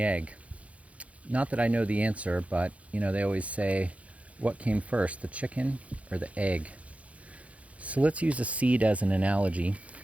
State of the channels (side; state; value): left; late; 0.065 ms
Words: egg. Not that I know the answer, but they always say, what came first, the chicken or the egg? So let's use a seed as an analogy,